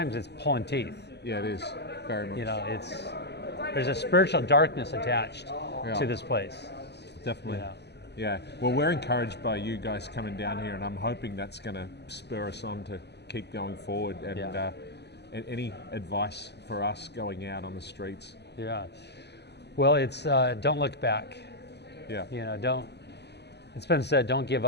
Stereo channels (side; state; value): right; late; 0.49 ms